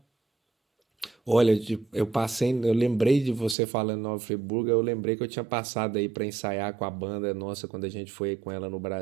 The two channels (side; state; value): left; drops out; at 3.6 s